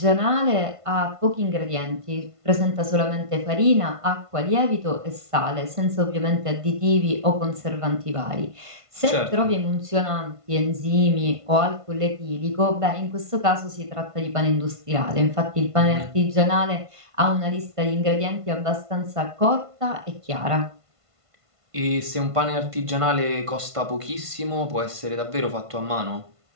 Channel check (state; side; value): late; left; 1.5 ms